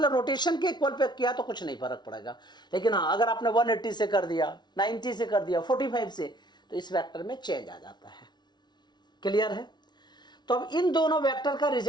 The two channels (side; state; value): right; late; 0.20 ms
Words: रोटेशन के इक्वल पे किया तो कुछ नहीं फर्क पड़ेगा। लेकिन हाँ, अगर आपने 180 से कर दिया, 90 से कर दिया, 45 से, तो इस वेक्टर में चेंज आ जाता है। क्लियर है? तो अब इन दोनों वेक्टर का